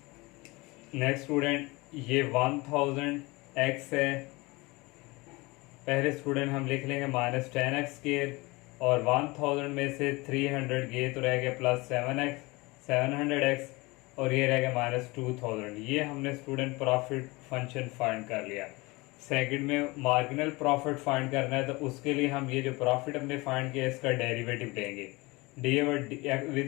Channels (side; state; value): right; quieter; 23.7 dB